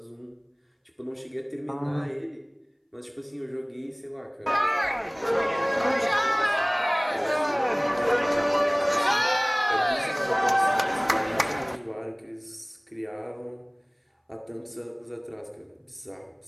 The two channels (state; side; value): identical; both; correlation 1.00